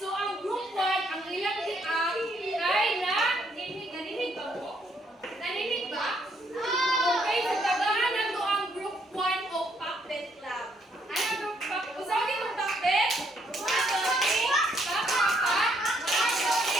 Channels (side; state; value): both; normal; correlation 0.71